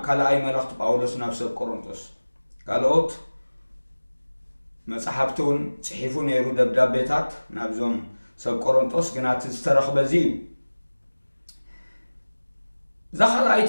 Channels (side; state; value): both; inverted; correlation -1.00